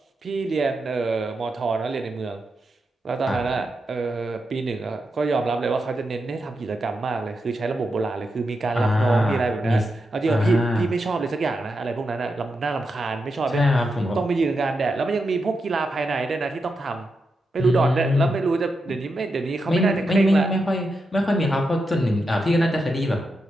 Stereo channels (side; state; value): both; normal; correlation 0.86